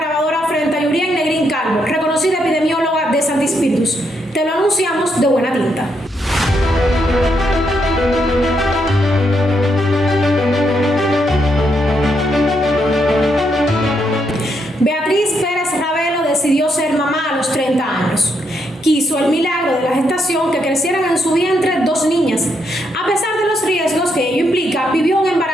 frente a Yurien Negrín Calvo, reconocida epidemióloga de Santi Spíritus. Te lo anunciamos de buena tinta. Beatriz Pérez Ravelo decidió ser mamá a los 30 años. Quiso el milagro de la gestación que crecieran en su vientre 2 niñas. A pesar de los riesgos que ello implica, vivió un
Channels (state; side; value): normal; both; correlation 0.78